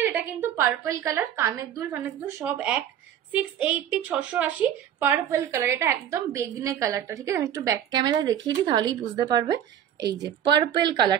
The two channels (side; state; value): left; quieter; 10.1 dB